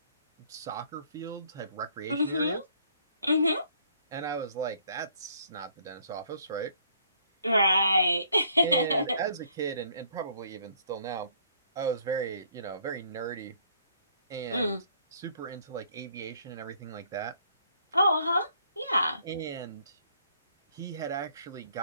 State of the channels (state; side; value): inverted; both; correlation -0.63